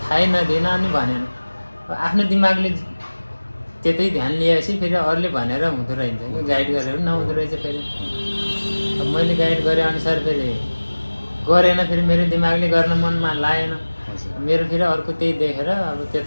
नदिएन अनि भनेन। आफ्नो दिमागले त्यतै ध्यान लिएपछि फेरि अरूले भनेर हुँदो रहेछ, गाइड गरेर नहुँदो रहेछ। फेरि अब मैले गाइड गरे अनुसार फेरि गरेन, फेरि मेरो दिमागले गर्न मनमा लागेन मेरो। फेरि अर्को त्यही देखेर अब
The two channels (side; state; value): both; inverted; correlation -1.00